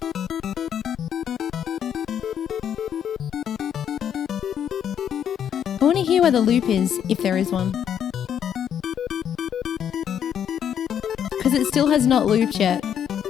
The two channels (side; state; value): right; quieter; 9.0 dB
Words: I want to hear where the loop is, if there is one. Because it still has not looped yet,